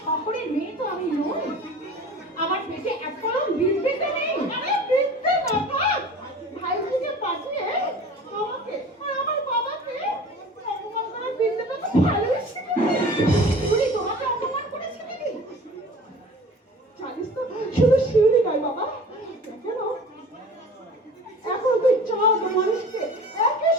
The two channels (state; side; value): normal; both; correlation 0.42